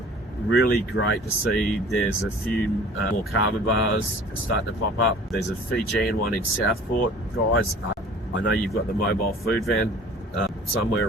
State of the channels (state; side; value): normal; both; correlation 0.47